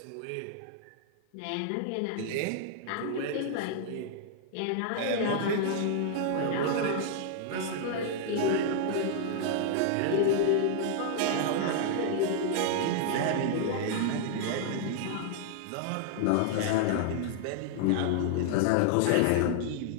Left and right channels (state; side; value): different; both; correlation -0.01